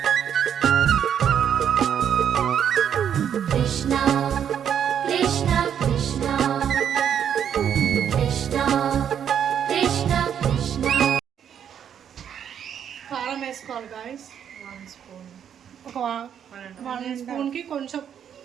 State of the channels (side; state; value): left; quieter; 8.8 dB